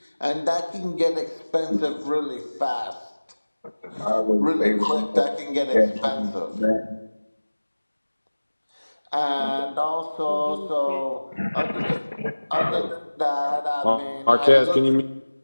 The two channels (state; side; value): inverted; both; correlation -1.00